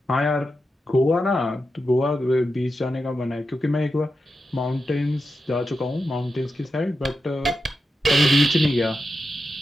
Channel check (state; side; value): normal; both; correlation 0.89